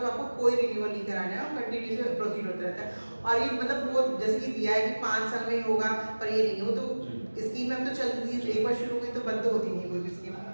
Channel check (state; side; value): inverted; both; correlation -1.00